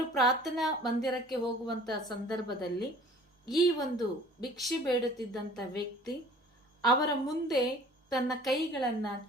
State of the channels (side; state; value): both; normal; correlation 0.49